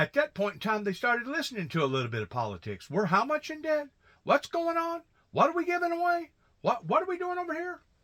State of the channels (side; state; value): both; identical; correlation 1.00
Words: that point in time, they started listening to a little bit of politics. We're how much in debt? What's going on? What are we giving away? What are we doing over here?